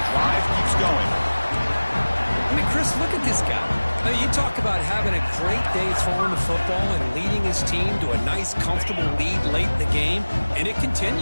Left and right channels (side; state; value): both; inverted; correlation -1.00